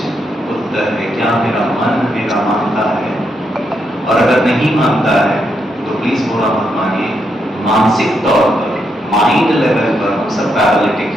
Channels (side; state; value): both; normal; correlation 0.80